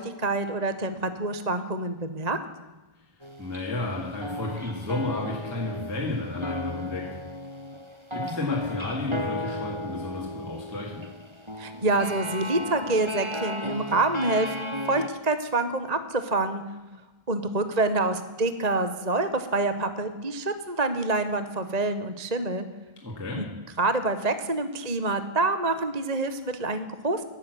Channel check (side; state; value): left; late; 1.8 ms